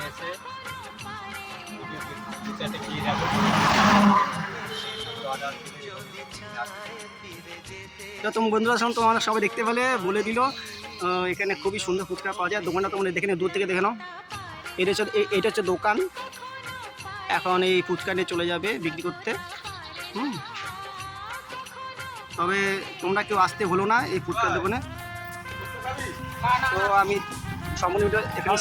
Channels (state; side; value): identical; both; correlation 1.00